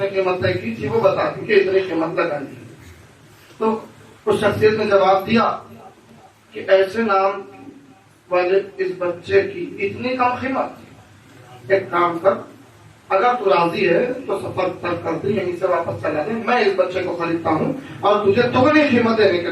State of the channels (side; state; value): both; identical; correlation 1.00